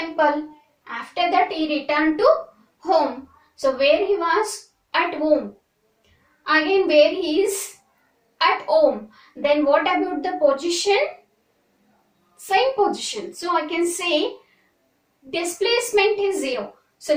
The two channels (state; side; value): identical; both; correlation 1.00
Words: After that he returned to home. So where he was? At home. Again where he is? At home. Then what about the position? Same position. So I can say displacement is 0. So